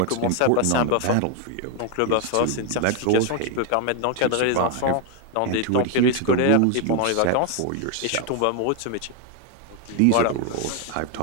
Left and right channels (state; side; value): different; both; correlation 0.01